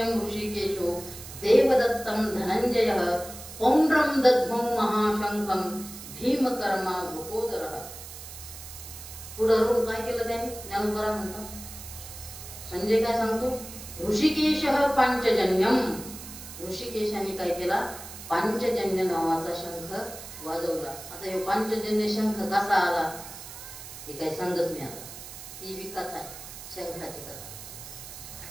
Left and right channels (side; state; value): right; noise; hiss, 13 dB below the sound